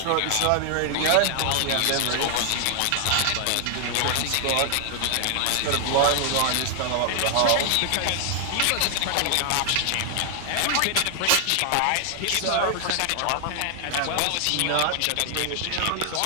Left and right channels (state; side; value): different; both; correlation 0.00